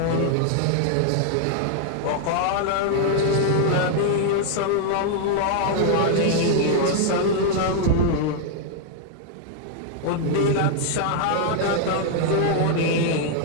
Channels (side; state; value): both; different; correlation -0.01